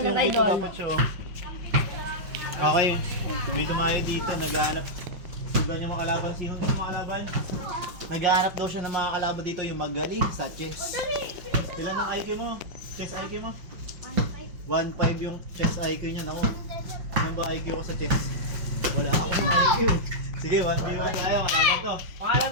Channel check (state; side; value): late; left; 5.6 ms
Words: ay doon. Okay. May tumayo dito. Naghahanap. Sugan yung mga kalaban. Sino yung mga kalaban? Naghahanap daw siya ng mga kalaban dito. Yung magaling sa chess. Ilan ang IQ mo? Chess IQ mo? 1.5 yung chess IQ niya. Naku. Ano ba IQ ko sa chess? Wala akong IQ. Sige, 1v1 tayo. Kalaban to. Pangalan